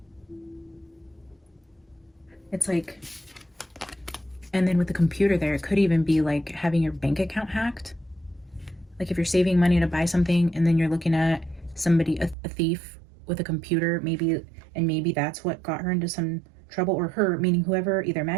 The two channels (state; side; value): drops out; left; at 12.4 s